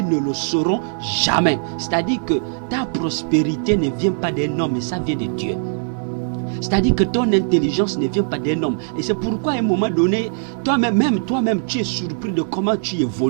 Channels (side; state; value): left; silent; digital silence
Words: le sauront jamais. C'est-à-dire que ta prospérité ne vient pas d'un homme, mais ça vient de Dieu. C'est-à-dire que ton intelligence ne vient pas d'un homme. Et c'est pourquoi à un moment donné, toi-même, tu es surpris de comment tu